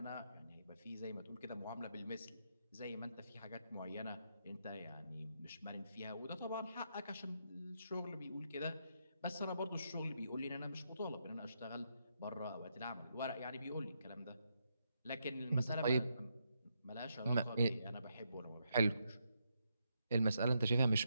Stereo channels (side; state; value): both; inverted; correlation -0.80